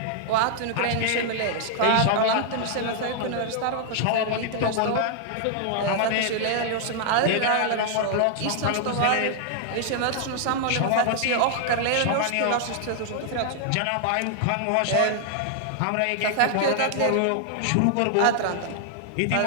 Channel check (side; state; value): both; different; correlation -0.01